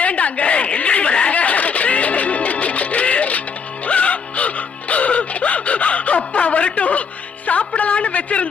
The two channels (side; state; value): right; quieter; 6.0 dB